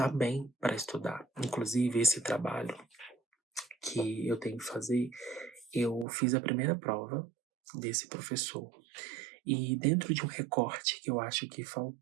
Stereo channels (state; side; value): drops out; left; at 6.1 s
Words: bem para estudar. Inclusive, esse trabalho que eu tenho que fazer, eu fiz a primeira prova desse professor. E dentro de um recorte que eu acho que